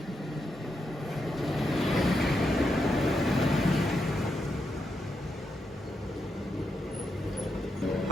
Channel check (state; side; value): normal; both; correlation 0.84